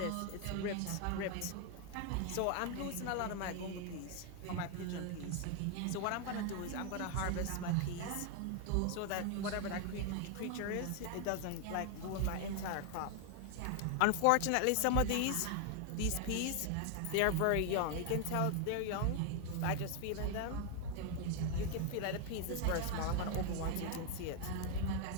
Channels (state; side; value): different; both; correlation 0.00